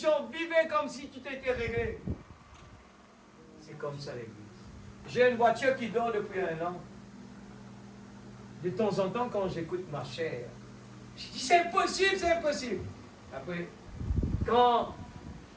Vivez comme si tout était réglé. C'est comme ça l'église. J'ai une voiture qui dort depuis 1 an. De temps en temps, quand j'écoute ma chère, je dis c'est impossible, c'est impossible. Après, quand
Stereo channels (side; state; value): both; identical; correlation 1.00